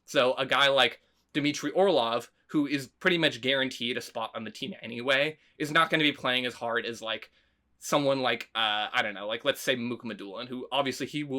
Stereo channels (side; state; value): both; identical; correlation 1.00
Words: So a guy like Dmitry Orlov, who is pretty much guaranteed a spot on the team anyway, is not going to be playing as hard as, like, someone like, I don't know, like, let's say Mukhamadullin, who obviously he